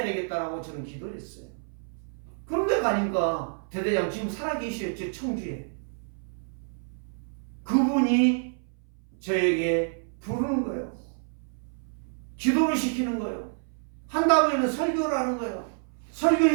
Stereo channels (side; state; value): left; silent; 59 dB below the other